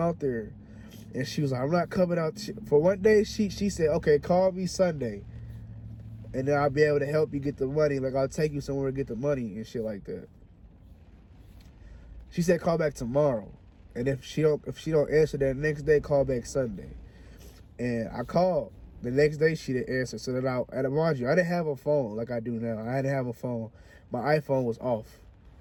there. And she was like, I'm not coming out. For one day, she said, okay, call me Sunday. And then I'll be able to help you get the money. Like, I'll take you somewhere to get the money and shit like that. She said, call back tomorrow. And if she don't answer that next day, call back Sunday. And I called. The next day, she didn't answer. So then and mind you, I didn't have a phone like I do now. I didn't have a phone. My iPhone was off.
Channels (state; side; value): identical; both; correlation 1.00